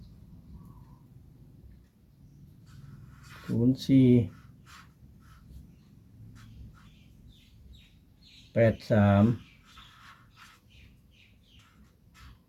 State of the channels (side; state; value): both; identical; correlation 1.00